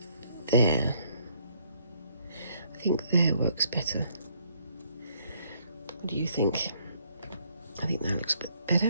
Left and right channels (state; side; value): inverted; both; correlation -0.67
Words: there. I think there works better. What do you think? I think that looks a bit